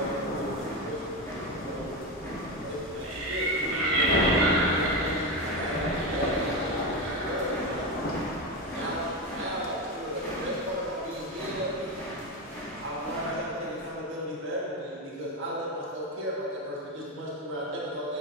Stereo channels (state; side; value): normal; both; correlation 0.16